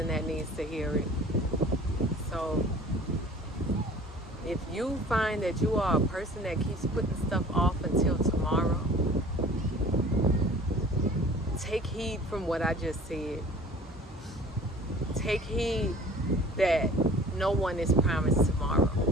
that needs to hear it. So if you find that you are a person that keeps putting stuff off until tomorrow, take heed from what I just said. Take heed that no one is promised tomorrow.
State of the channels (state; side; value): normal; both; correlation 0.47